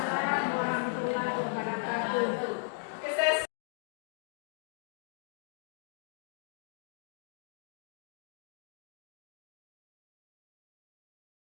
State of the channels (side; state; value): right; silent; digital silence